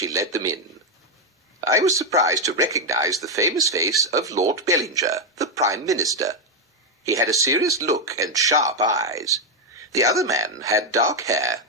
led them in. I was surprised to recognize the famous face of Lord Bellinger, the Prime Minister. He had a serious look and sharp eyes. The other man had dark hair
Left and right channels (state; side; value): normal; both; correlation 0.04